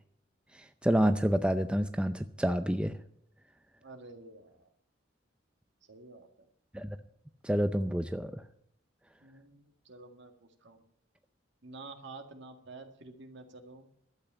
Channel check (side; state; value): both; normal; correlation 0.95